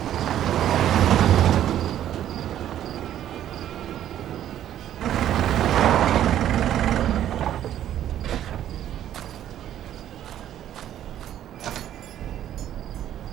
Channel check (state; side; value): quieter; left; 11.4 dB